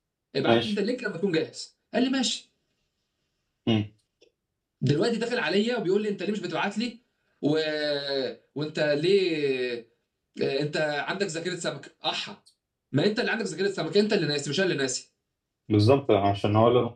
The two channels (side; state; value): both; identical; correlation 1.00